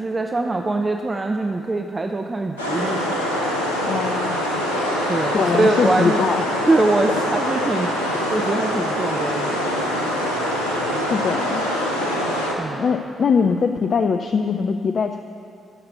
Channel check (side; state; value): both; normal; correlation 0.69